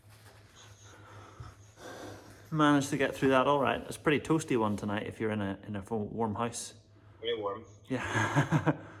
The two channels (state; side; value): identical; both; correlation 1.00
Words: Managed to get through that all right. It's a pretty toasty one tonight if you're in a warm house. Very warm. Yeah.